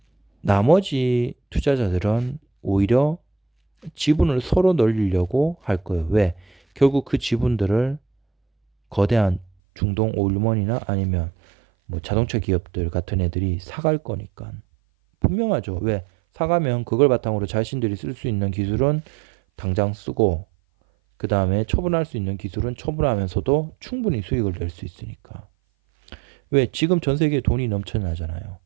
나머지 투자자들은 오히려 지분을 서로 늘리려고 할 거예요. 왜? 결국 그 지분들을 거대한 중동 오일먼이나 아니면 뭐 자동차 기업들 같은 애들이 사갈 거니까. 분명하죠. 왜? 사가면 그걸 바탕으로 자신들이 쓸 수 있는 기술은 당장 쓰고, 그 다음에 처분할 수 있는 기술은 처분하면서도 충분히 수익을 낼 수 있으니까. 왜? 지금 전 세계에 돈이 넘쳐나잖아요.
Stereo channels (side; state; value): left; drops out; at 9.5 s